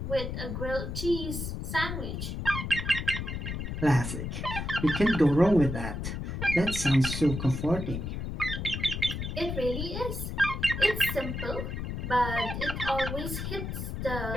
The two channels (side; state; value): left; noise; rumble, 4 dB below the sound